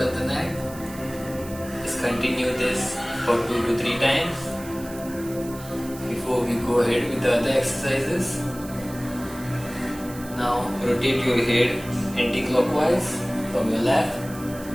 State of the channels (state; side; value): noise; right; hiss, 17 dB below the sound